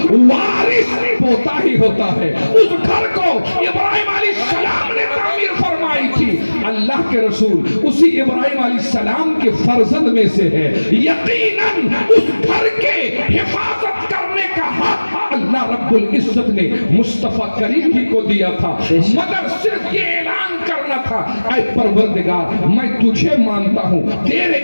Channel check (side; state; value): both; inverted; correlation -1.00